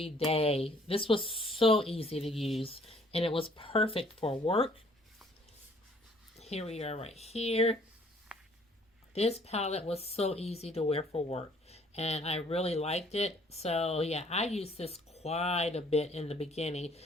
day. This was so easy to use, and it was perfect for work. Here we are right here. This palette was so easy to wear for work, and I really liked it. So, yeah, I used this quite a bit in the beginning,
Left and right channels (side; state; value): both; normal; correlation 0.60